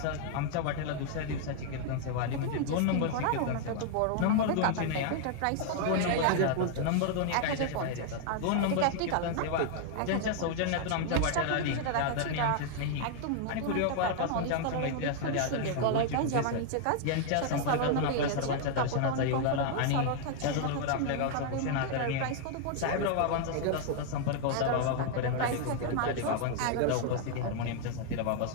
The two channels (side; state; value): both; different; correlation 0.00